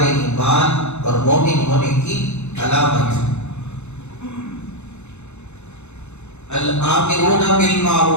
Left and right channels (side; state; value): right; late; 0.82 ms